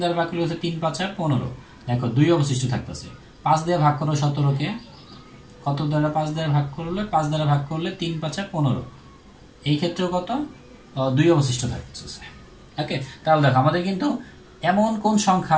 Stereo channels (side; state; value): both; identical; correlation 1.00